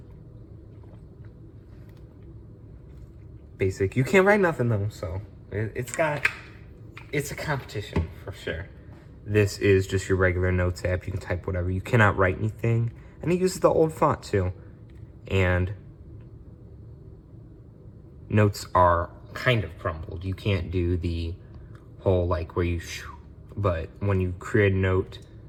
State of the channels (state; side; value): identical; both; correlation 1.00